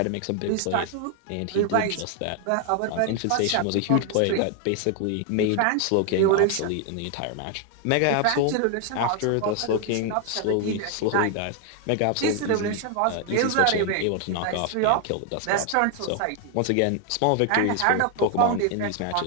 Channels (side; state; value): both; different; correlation 0.00